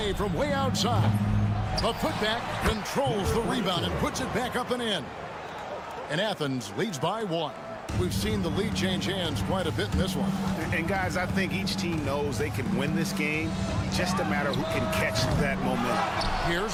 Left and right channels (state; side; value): identical; both; correlation 1.00